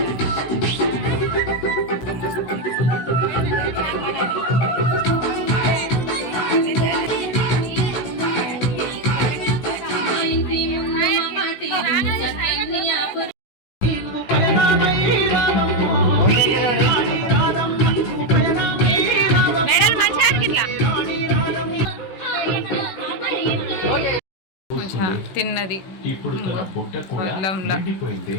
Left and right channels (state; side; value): late; right; 16 ms